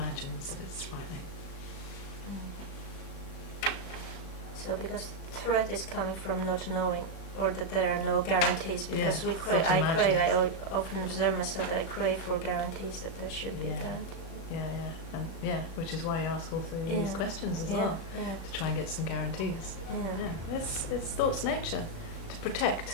that it's frightening. So because threat is coming from not knowing, or that there are no guarantees, because Yeah, I often observe myself that I crave for guarantees, that there should be a Yeah. guarantee. And which is why you ask all three of these questions as well, to try and get some guarantees. It's thought's nature to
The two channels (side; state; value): right; late; 36 ms